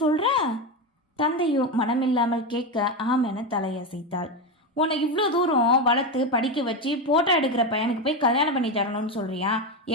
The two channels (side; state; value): both; normal; correlation 0.14